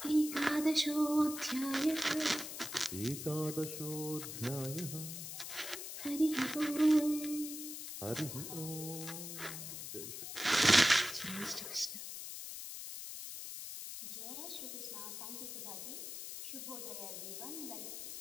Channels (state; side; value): noise; left; hiss, 8 dB below the sound